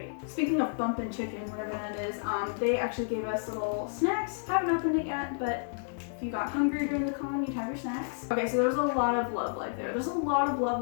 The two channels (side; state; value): right; silent; digital silence